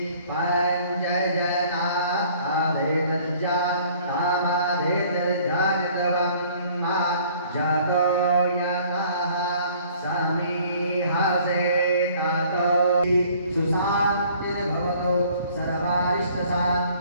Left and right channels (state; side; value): inverted; both; correlation -0.56